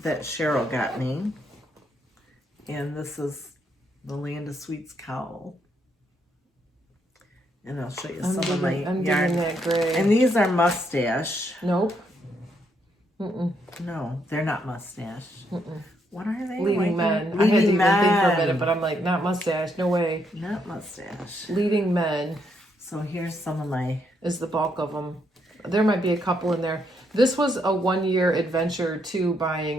that Cheryl got me. And this is the Land of Sweets cowl. And I'll show you some of my I'm yarn. digging that gray. And these are mustache. Nope. Mm-mm. No, they're not mustache. Mm-mm. What are they? Leading men. I Leading had to even men. think for a minute, but I'm like, not mustache. No way. Not mustache. Leading men So here's some of my... is the bulk of them. There might be a couple in there. This was a 1-year adventure to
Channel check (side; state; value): both; normal; correlation 0.75